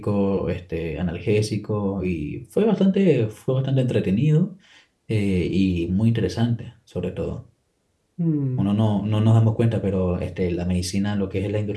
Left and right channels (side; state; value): both; identical; correlation 1.00